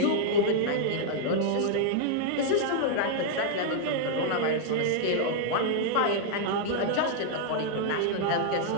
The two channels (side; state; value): both; different; correlation -0.01